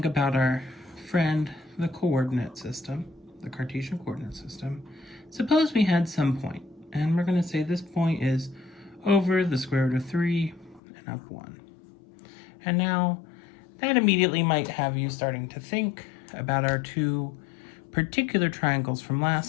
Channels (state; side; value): drops out; right; at 10.8 s